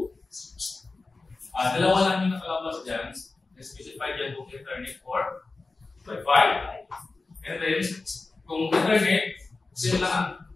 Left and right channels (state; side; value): quieter; right; 3.6 dB